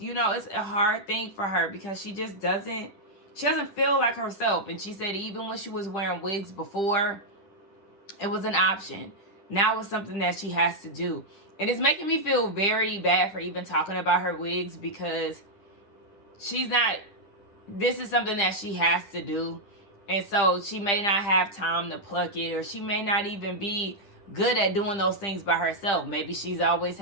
know, it's a hard thing for her because she doesn't feel like herself. And she said even when she was wearing wigs before, it was an option. Now it's something that she has to do. And it's making me feel very bad for even talking about her wigs because this is something that she has to do. And so she may not have time to pluck it, or she may not even be good at doing those things by herself. Maybe she's always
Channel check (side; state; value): right; late; 10 ms